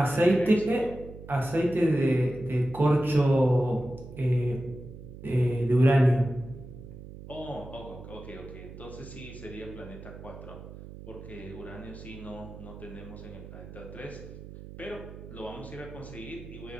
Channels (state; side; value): noise; right; hum, 14 dB below the sound